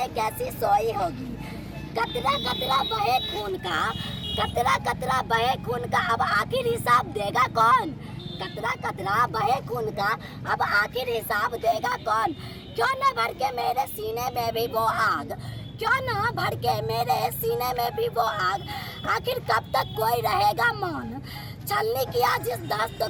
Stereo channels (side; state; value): both; identical; correlation 1.00